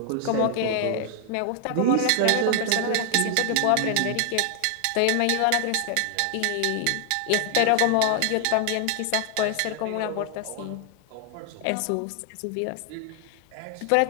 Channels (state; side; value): different; both; correlation 0.00